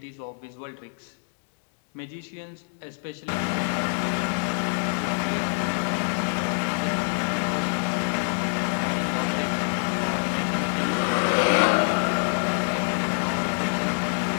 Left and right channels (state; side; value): silent; right; 61 dB below the other